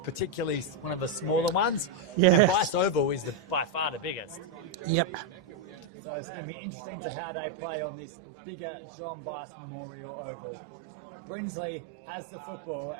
one of the smaller ones. Yeah. And Bice Oval is by far the biggest. Yep. So it's going to be interesting to how they play on this bigger John Bice Memorial Oval. Brinsley has the football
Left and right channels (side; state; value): left; drops out; at 5.9 s